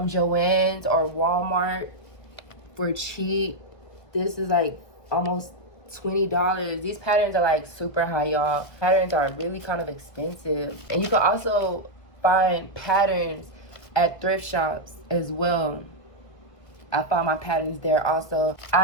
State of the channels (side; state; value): right; late; 1.3 ms